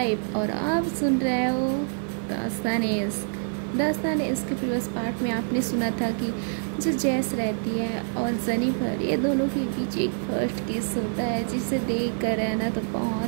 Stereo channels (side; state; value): left; silent; 59 dB below the other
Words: और आप सुन रहे हो दास्तान इश्क के प्रीवियस पार्ट में आपने सुना था कि जो जैस रहती है और जेनिफर ये दोनों के बीच एक फर्स्ट किस होता है जिसे देख कर रहना तो